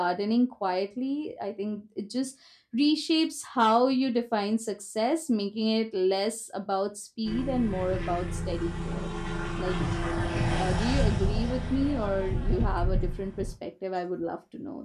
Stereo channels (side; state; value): both; identical; correlation 1.00